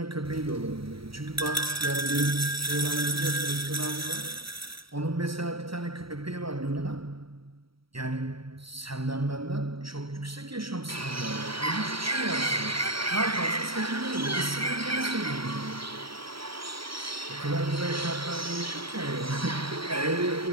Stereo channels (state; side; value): late; left; 0.75 ms